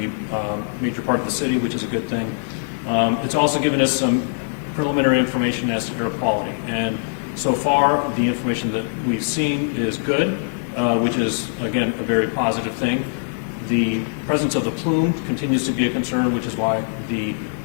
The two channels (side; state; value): right; silent; digital silence